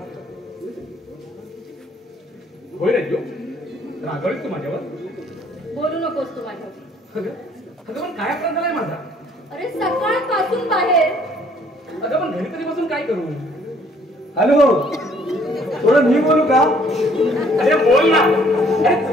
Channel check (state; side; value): normal; both; correlation 0.61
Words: होय राजू, रागवलीस तू माझ्यावर? बोलू नकोस तू माझ्यावर. अगं पण काय अपराध झालाय माझा? अरे सकाळपासून बाहेर. अगं पण घरी तरी बसून काय करू? हॅलो, थोडं मी बोलू का? अरे बोल ना. अरे